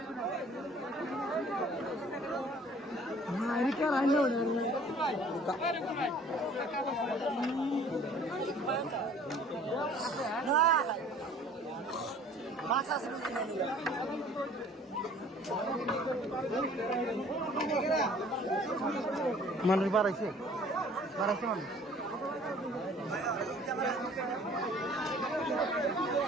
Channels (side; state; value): both; normal; correlation 0.52